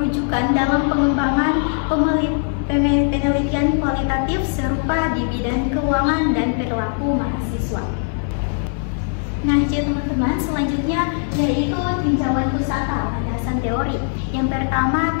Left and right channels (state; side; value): silent; right; 59 dB below the other